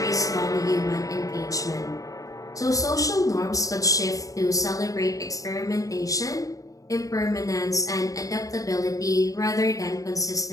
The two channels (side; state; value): right; late; 0.16 ms